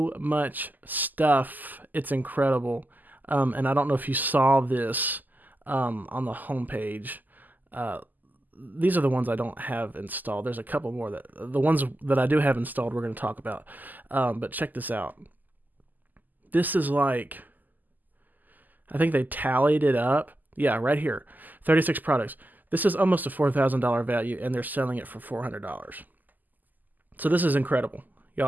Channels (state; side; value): late; left; 0.084 ms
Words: much stuff. It's incredible. And I don't know if you saw this on the homepage. These are the ones I don't have installed. There's a couple more. The ones that I do have installed we're going to talk about. But check this out. This is like, I think they tallied it up. Yeah, right here. 36 products. This is almost a $4,000 value, and they're selling it for $400. So this is incredible. Y'all